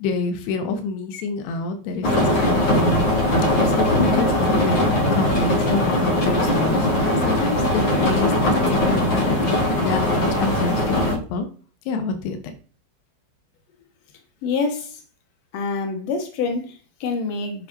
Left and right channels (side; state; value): right; late; 9.4 ms